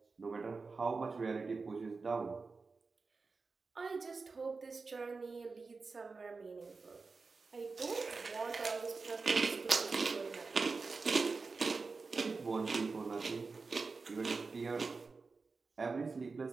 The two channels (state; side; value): quieter; left; 4.3 dB